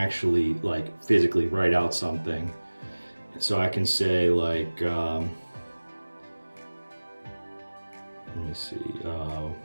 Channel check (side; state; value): both; inverted; correlation -1.00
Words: like physically write out something. So I can say like, let me see,